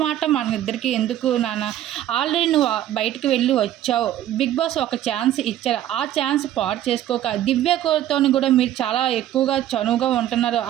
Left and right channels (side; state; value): left; quieter; 12.3 dB